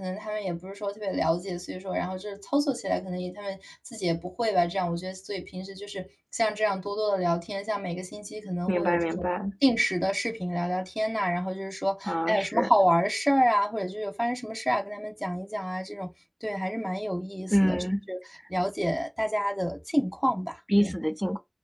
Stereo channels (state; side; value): identical; both; correlation 1.00